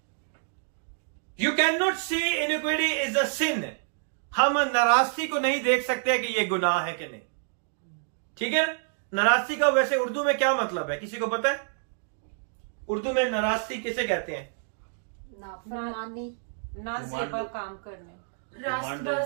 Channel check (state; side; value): silent; left; digital silence